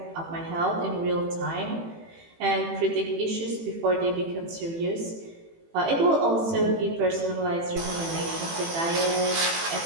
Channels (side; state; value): left; late; 18 ms